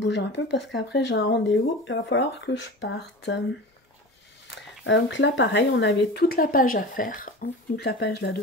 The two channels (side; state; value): both; normal; correlation 0.32